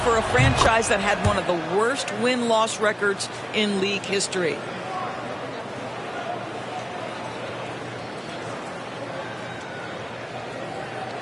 for a franchise that had one of the worst win-loss records in league history.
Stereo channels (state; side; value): identical; both; correlation 1.00